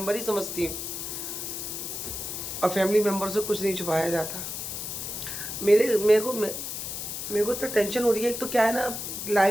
ही समझती हूँ और फैमिली मेम्बर से कुछ नहीं छुपाया जाता। मेरे को तो टेंशन हो रही है। एक तो क्या है ना,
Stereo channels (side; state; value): left; noise; hiss, 6 dB below the sound